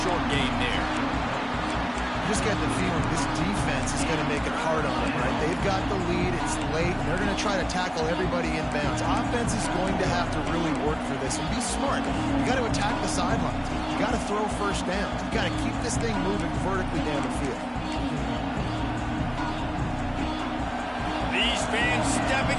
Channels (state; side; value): identical; both; correlation 1.00